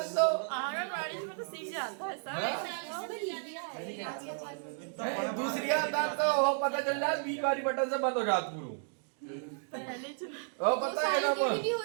दो। आंगनवाड़ी में तो सीख जाता है सब। दूसरी आता तो वो पता चल जाए 20 बारी बटन से बंद हो जात पूरा। वो पता है ना वो होते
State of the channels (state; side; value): silent; left; digital silence